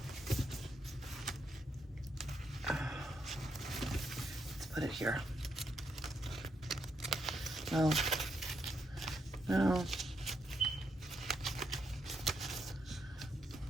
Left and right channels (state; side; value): normal; both; correlation 0.79